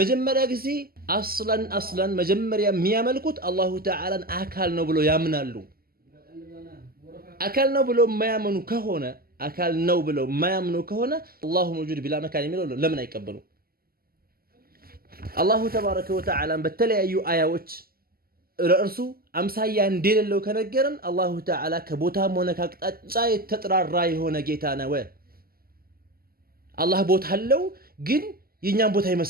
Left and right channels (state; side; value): late; left; 0.43 ms